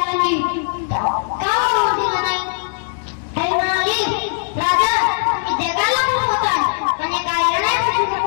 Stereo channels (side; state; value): right; silent; digital silence